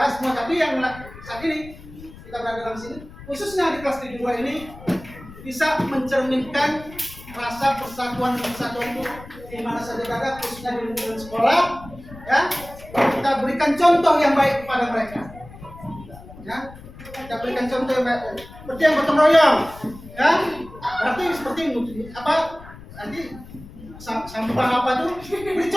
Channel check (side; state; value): left; noise; rumble, 17 dB below the sound